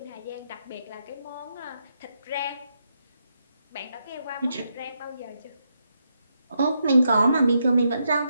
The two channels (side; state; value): both; inverted; correlation -0.81